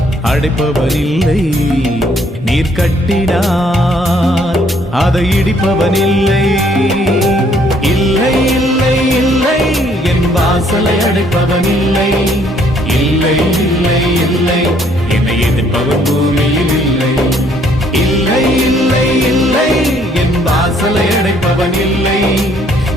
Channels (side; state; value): both; normal; correlation 0.65